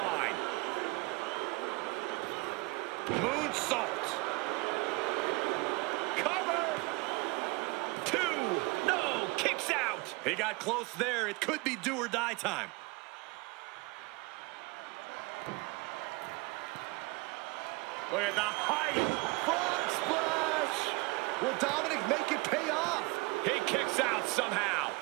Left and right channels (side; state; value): left; quieter; 26.0 dB